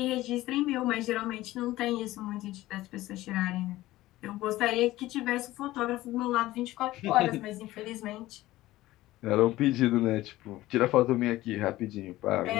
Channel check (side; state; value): right; quieter; 16.7 dB